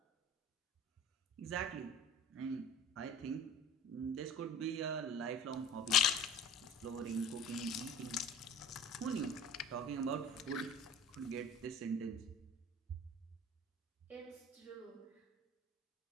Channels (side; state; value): both; normal; correlation 0.43